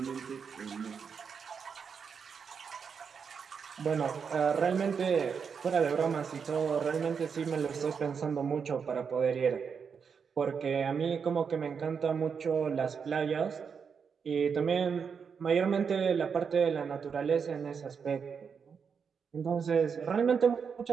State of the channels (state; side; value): quieter; left; 6.3 dB